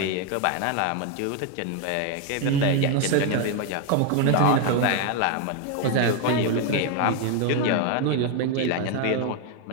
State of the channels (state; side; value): different; both; correlation 0.01